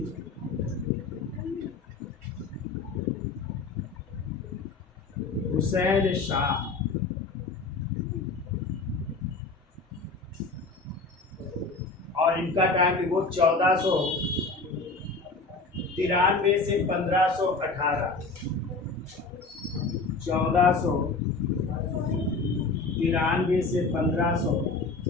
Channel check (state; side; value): quieter; right; 3.8 dB